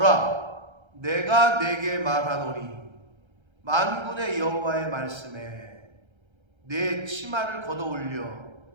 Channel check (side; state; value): left; late; 1.3 ms